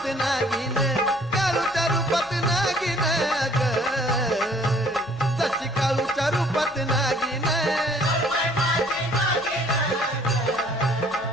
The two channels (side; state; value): left; noise; hum, 25 dB below the sound